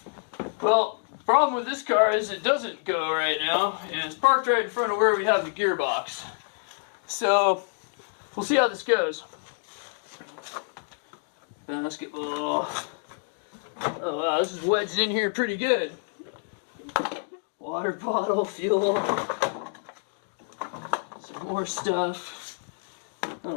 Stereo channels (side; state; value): right; silent; digital silence